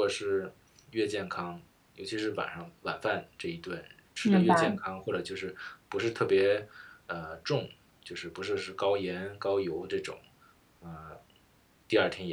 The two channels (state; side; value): identical; both; correlation 1.00